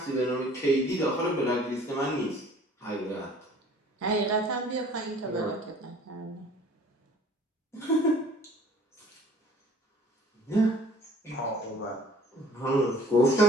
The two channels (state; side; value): normal; both; correlation 0.52